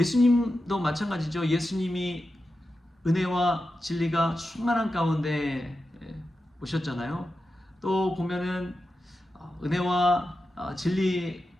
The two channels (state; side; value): normal; both; correlation 0.90